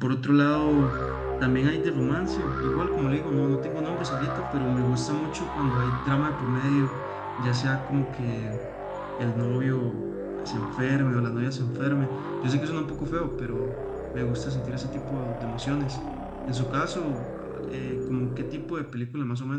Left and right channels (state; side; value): identical; both; correlation 1.00